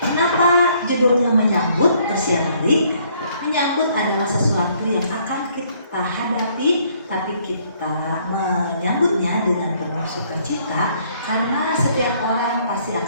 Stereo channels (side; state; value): both; inverted; correlation -0.65